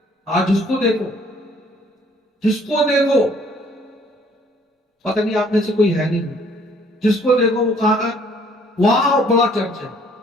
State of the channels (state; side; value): normal; both; correlation 0.60